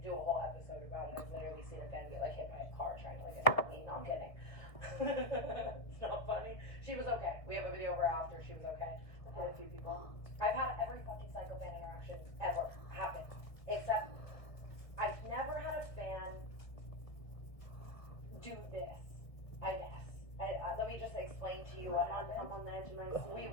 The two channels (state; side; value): late; right; 1.4 ms